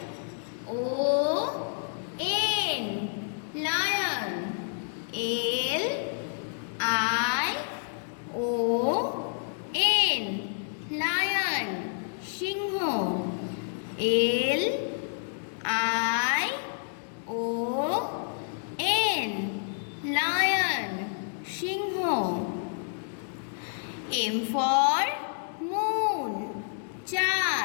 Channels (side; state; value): right; silent; digital silence